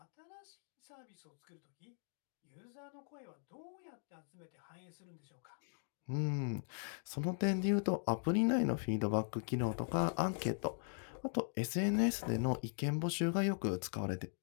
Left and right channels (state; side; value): silent; right; digital silence